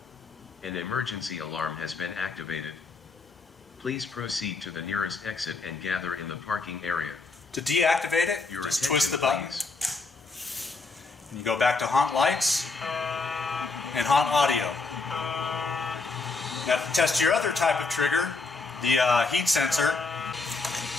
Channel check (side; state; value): right; quieter; 3.8 dB